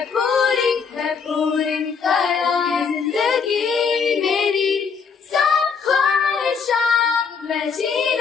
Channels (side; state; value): right; quieter; 5.8 dB